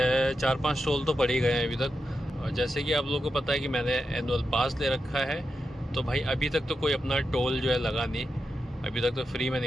टोल तो पड़ ही गए हैं अभी तक। और जैसे कि आप लोगों को पता है कि मैंने एनुअल पास ले रखा है, तो भाई अभी तक तो कोई अपना टोल जो है लगा नहीं। अभी तक तो फ्री में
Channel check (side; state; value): both; normal; correlation 0.88